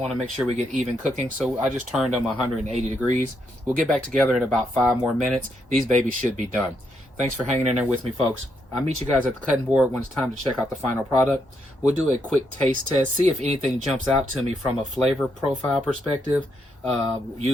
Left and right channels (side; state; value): both; normal; correlation 0.78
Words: to make sure we get even cooking, so I just turned them 180 degrees. We'll get back together in about 5 more minutes. These babies should be done. Thanks for hanging in there with me, folks. I'll meet you guys at the cutting board when it's time to check out the final product. We'll do a quick taste test, see if anything jumps out to me from a flavor profile perspective,